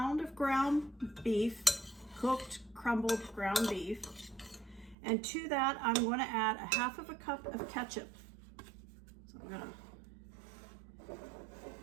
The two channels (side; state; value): left; drops out; at 5.0 s